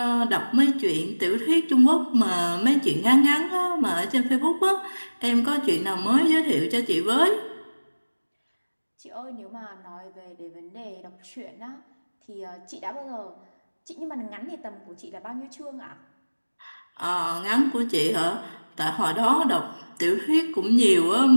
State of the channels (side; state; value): both; inverted; correlation -1.00